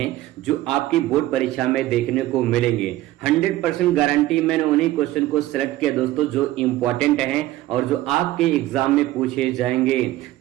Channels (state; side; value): quieter; left; 15.9 dB